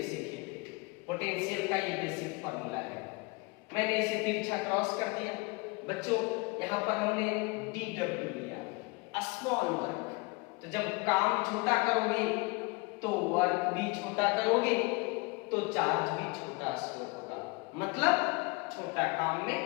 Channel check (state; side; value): quieter; right; 26.8 dB